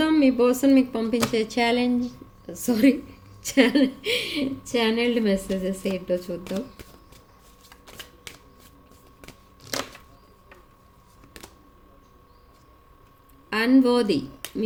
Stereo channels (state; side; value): identical; both; correlation 1.00